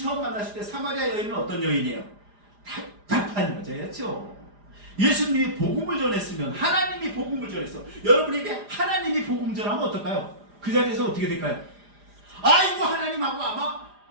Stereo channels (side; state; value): left; late; 4.9 ms